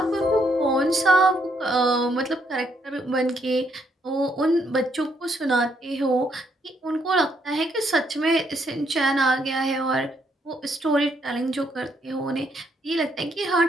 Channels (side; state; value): both; normal; correlation 0.73